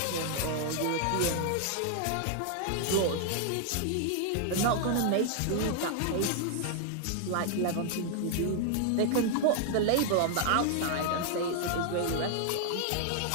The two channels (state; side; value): different; both; correlation 0.00